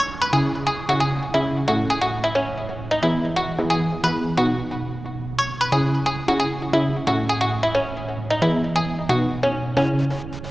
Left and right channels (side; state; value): right; noise; rumble, 11 dB below the sound